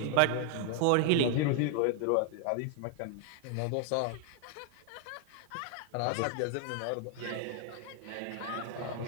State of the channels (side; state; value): both; different; correlation 0.00